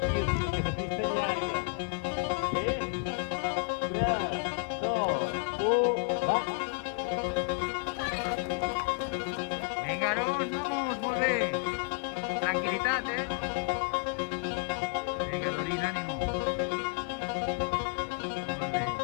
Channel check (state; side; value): quieter; right; 35.0 dB